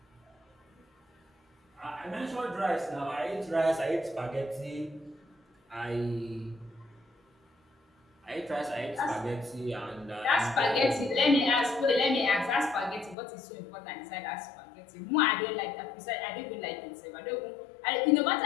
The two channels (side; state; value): right; drops out; at 13.2 s